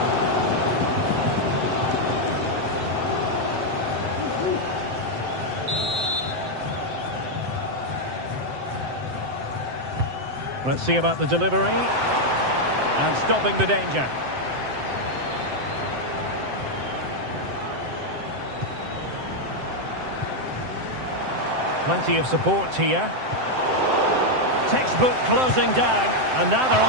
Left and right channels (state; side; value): late; left; 7.8 ms